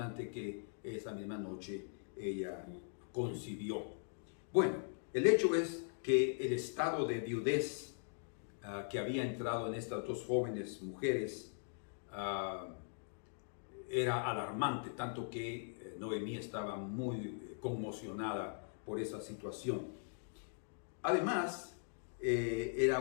que esa misma noche ella concibió. Bueno, el hecho es que el estado de viudez que había entrado en estas dos jóvenes mujeres era alarmante, tanto que Noemí estaba muy conmocionada por esa situación. Además, era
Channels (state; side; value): silent; right; digital silence